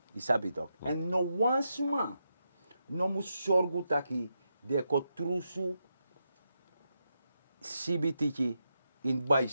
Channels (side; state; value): both; inverted; correlation -0.85